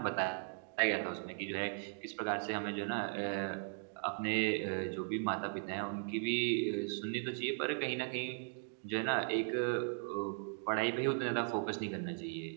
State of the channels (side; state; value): left; silent; digital silence